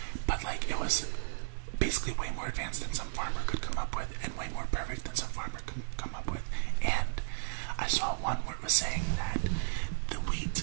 but like it was basically way more advanced than some farmer could come up with, and way more perfect than some farmer could come up with. And I saw one where it was saying that the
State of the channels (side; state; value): left; silent; 55 dB below the other